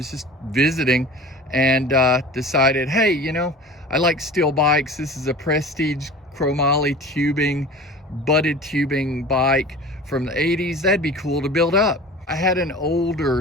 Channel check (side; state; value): both; normal; correlation 0.39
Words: just visiting and decided, hey, you know, I like steel bikes. This is a Prestige chromoly tubing, butted tubing bike from the 80s. That'd be cool to build up. I had an